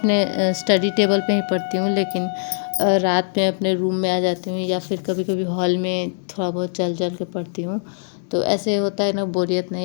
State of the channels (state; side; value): silent; right; 65 dB below the other